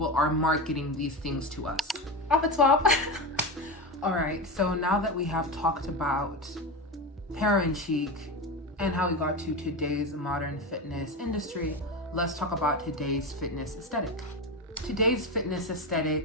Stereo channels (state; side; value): normal; both; correlation 0.20